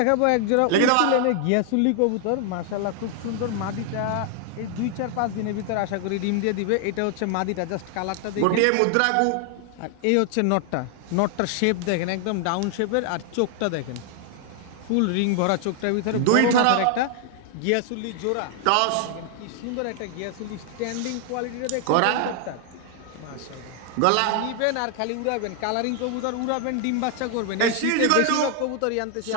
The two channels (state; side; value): different; both; correlation 0.00